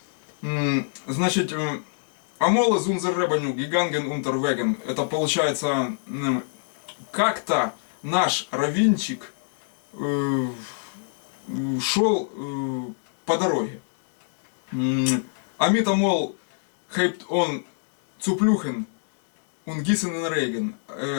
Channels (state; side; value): silent; right; digital silence